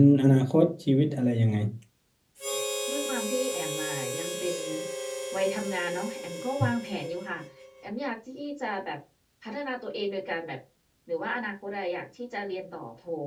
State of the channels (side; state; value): both; identical; correlation 1.00